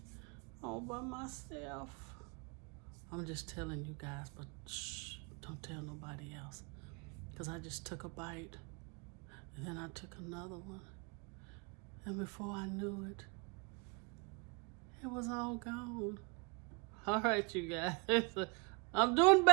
all by myself. I'm just telling you guys, but shh, don't tell nobody else. Because I just took a bite, and then I took another one. And before I knew it, it was all gone. All right, you guys. I'm doing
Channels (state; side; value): quieter; left; 31.4 dB